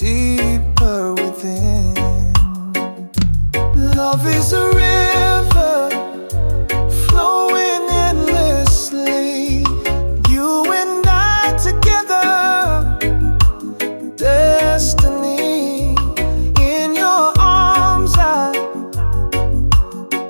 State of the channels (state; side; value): inverted; both; correlation -1.00